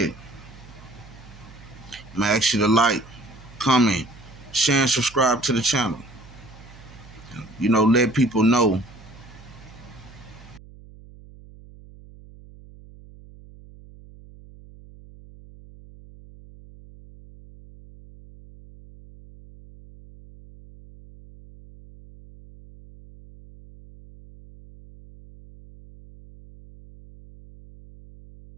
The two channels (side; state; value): right; noise; hum, 20 dB below the sound